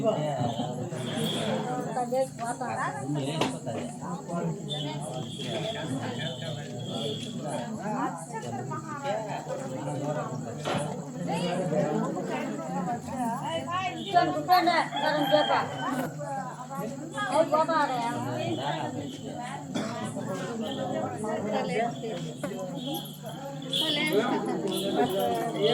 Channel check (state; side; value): identical; both; correlation 1.00